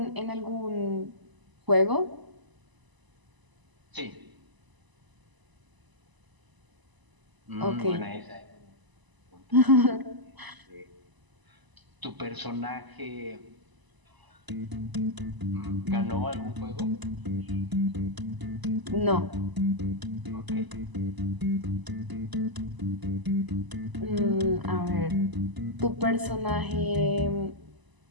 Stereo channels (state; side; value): late; left; 1.0 ms